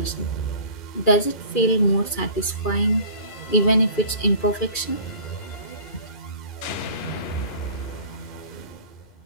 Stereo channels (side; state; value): right; late; 2.4 ms